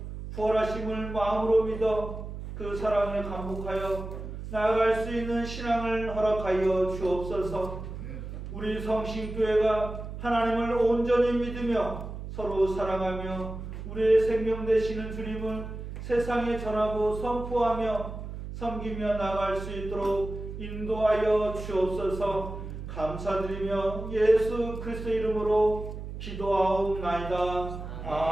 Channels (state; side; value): noise; right; hum, 9 dB below the sound